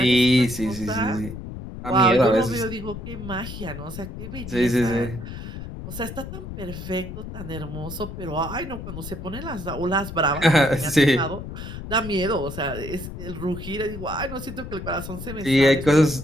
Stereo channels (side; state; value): left; noise; rumble, 9 dB below the sound